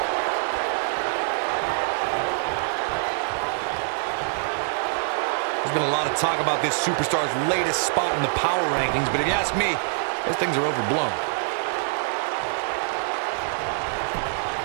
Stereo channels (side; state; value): left; silent; digital silence